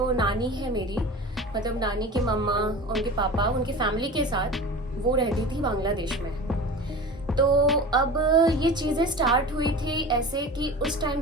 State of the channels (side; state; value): both; normal; correlation 0.34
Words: नानी है मेरी, मतलब नानी के मम्मा, उनके पापा, उनके फैमिली के साथ वो रहती थी बांग्लादेश में। तो अब ये चीज़ें स्टार्ट हुई थी ऐसे कि उस टाइम